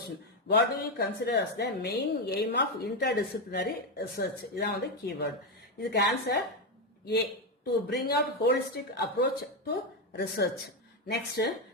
what do you consider as the main aim of interdisciplinary research? இதான் கீவேர்டு. இதுக்கு answer A, to bring out holistic approach to research. Next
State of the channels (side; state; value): both; normal; correlation 0.07